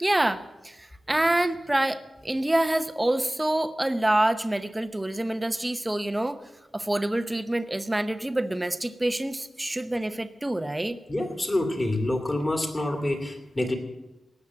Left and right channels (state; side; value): normal; both; correlation 0.97